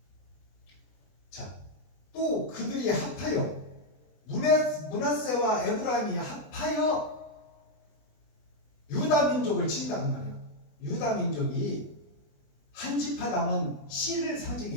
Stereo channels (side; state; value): right; late; 20 ms